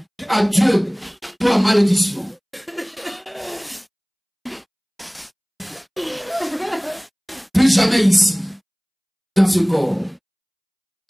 À Dieu, toi, malédiction. Plus jamais ici, dans ce corps.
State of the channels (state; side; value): identical; both; correlation 1.00